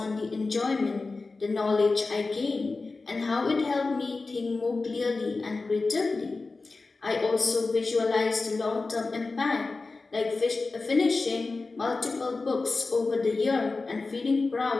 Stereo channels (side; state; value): right; quieter; 3.8 dB